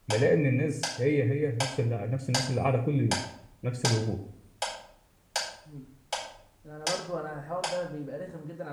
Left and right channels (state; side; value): identical; both; correlation 1.00